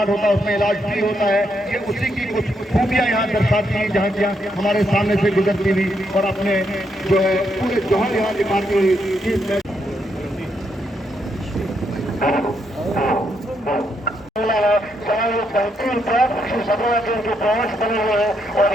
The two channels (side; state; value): both; normal; correlation 0.78